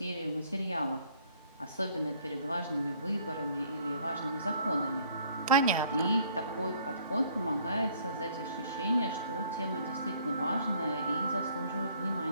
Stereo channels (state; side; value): inverted; both; correlation -0.60